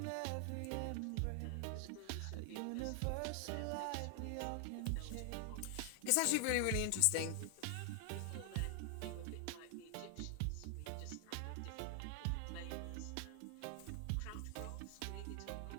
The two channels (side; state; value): both; different; correlation 0.00